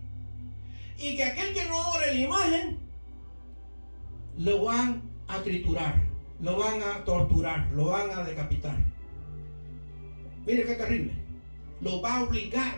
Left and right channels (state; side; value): inverted; both; correlation -1.00